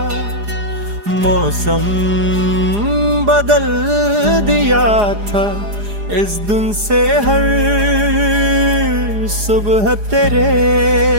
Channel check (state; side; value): late; left; 4.9 ms